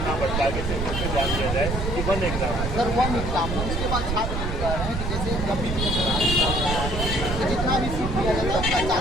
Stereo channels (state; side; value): noise; right; rumble, 2 dB below the sound